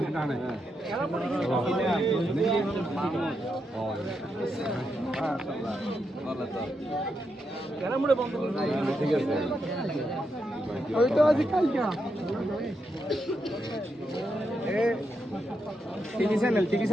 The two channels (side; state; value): both; normal; correlation 0.83